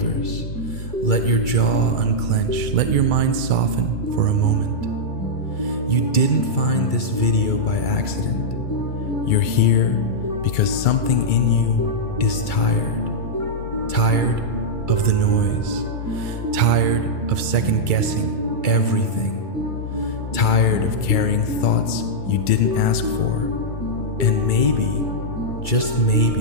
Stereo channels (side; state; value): right; late; 2.3 ms